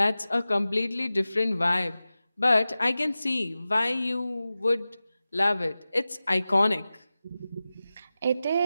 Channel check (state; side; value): inverted; both; correlation -0.95